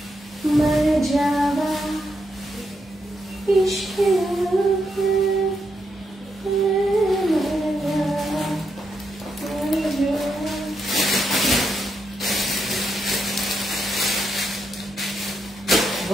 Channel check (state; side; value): normal; both; correlation 0.81